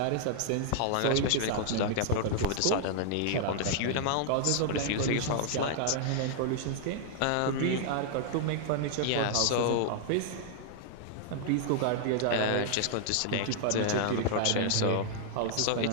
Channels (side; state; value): both; different; correlation 0.00